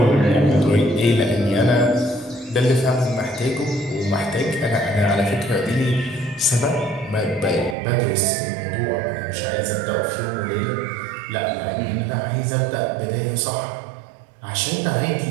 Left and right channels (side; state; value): left; drops out; at 7.8 s